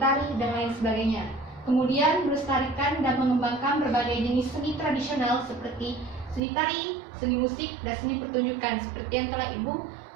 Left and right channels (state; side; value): drops out; left; at 6.4 s